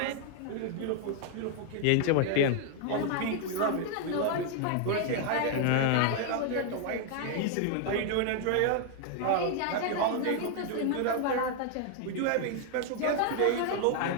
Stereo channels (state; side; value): different; both; correlation 0.00